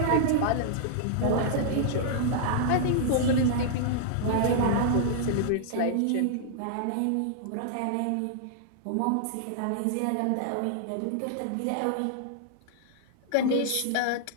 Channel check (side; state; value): both; different; correlation -0.01